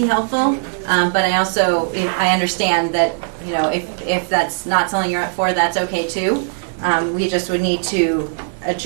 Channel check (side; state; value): left; silent; 67 dB below the other